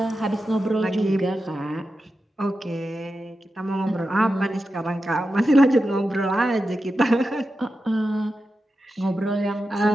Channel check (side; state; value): both; normal; correlation 0.91